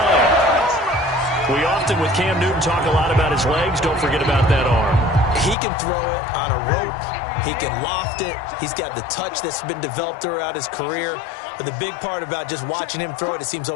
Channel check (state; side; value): drops out; right; at 5.6 s